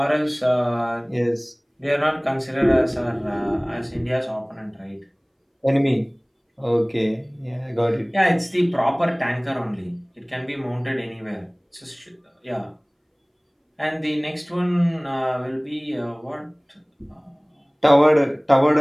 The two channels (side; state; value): both; identical; correlation 1.00